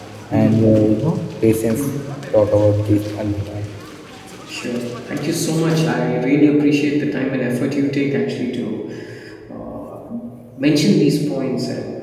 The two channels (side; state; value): both; identical; correlation 1.00